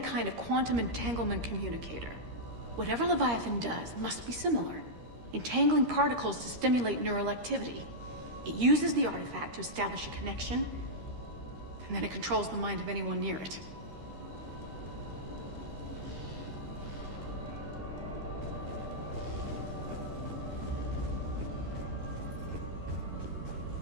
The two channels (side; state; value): left; late; 13 ms